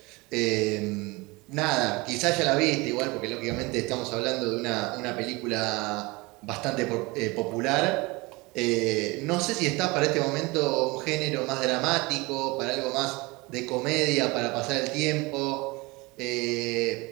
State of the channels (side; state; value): left; quieter; 24.2 dB